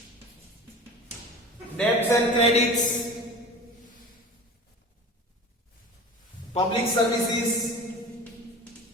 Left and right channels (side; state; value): both; normal; correlation 0.37